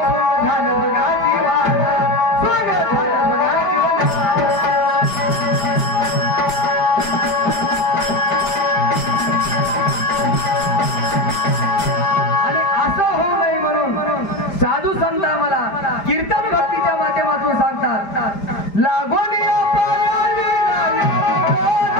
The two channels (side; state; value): right; late; 5.0 ms